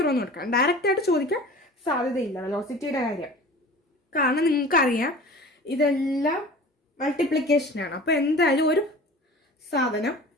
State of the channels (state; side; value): normal; both; correlation 0.40